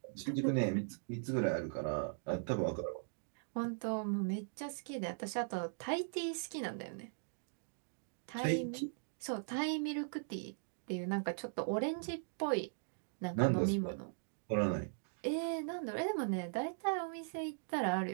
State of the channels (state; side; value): silent; left; digital silence